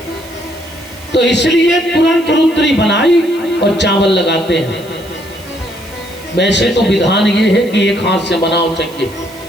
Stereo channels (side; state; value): right; noise; hiss, 22 dB below the sound